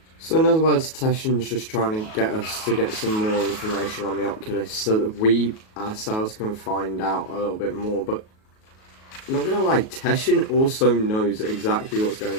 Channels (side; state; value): right; late; 37 ms